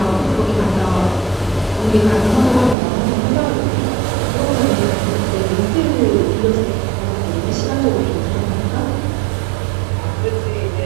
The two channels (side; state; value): left; drops out; at 2.8 s